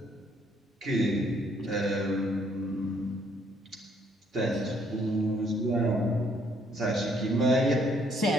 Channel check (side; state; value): both; normal; correlation 0.67